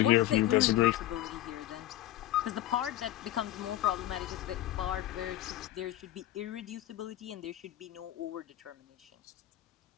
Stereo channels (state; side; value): quieter; right; 14.1 dB